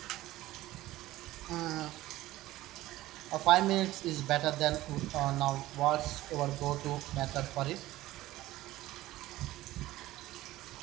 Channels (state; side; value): quieter; left; 16.4 dB